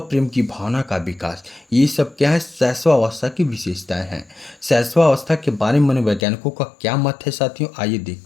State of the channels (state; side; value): drops out; right; at 6.2 s